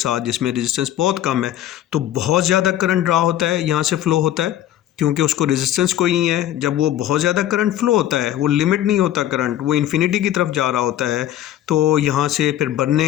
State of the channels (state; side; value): quieter; right; 12.3 dB